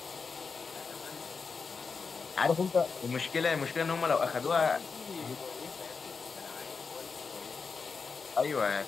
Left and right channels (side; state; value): right; quieter; 5.0 dB